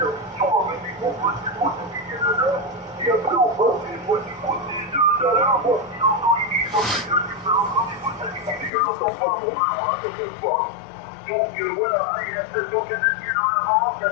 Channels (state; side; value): drops out; right; at 8.7 s